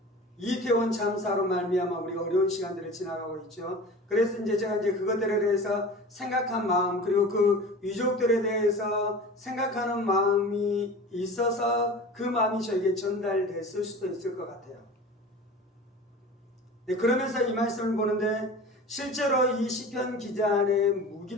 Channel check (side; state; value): both; normal; correlation 0.36